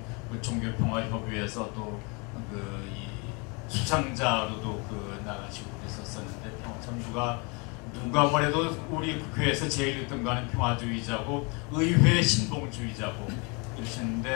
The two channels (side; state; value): right; quieter; 31.1 dB